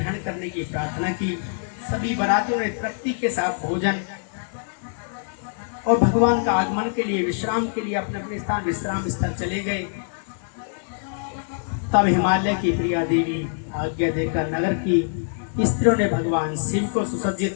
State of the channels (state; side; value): silent; right; digital silence